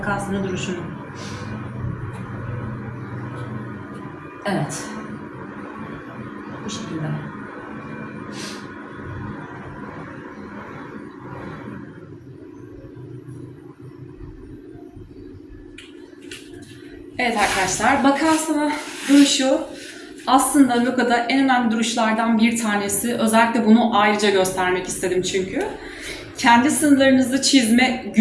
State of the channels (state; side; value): identical; both; correlation 1.00